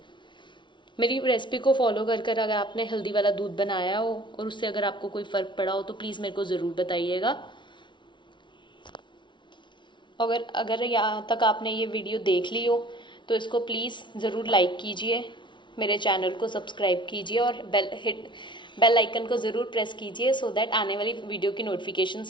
मेरी रेसिपी को फॉलो कर अगर आपने हल्दी वाला दूध बनाया हो और उससे अगर आपको कोई फ़र्क पड़ा हो तो प्लीज़ मेरे को ज़रूर बताइएगा। अगर यहाँ तक आपने ये वीडियो देख ली हो तो इसको प्लीज़ ज़रूर लाइक कीजिए, मेरे चैनल को सब्सक्राइब कीजिए और बेल आइकन को ज़रूर प्रेस कीजिए, सो दैट आने वाली वीडियो की नोटिफिकेशन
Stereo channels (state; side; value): late; right; 0.23 ms